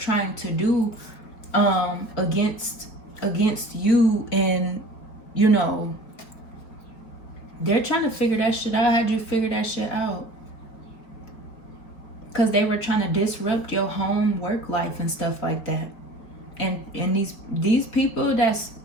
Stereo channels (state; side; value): late; right; 4.5 ms